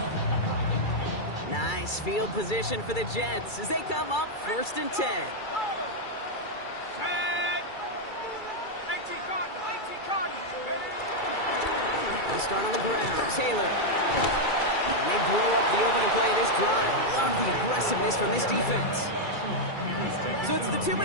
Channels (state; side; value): late; right; 2.3 ms